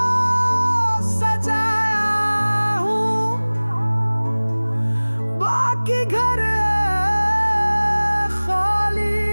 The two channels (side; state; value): both; inverted; correlation -1.00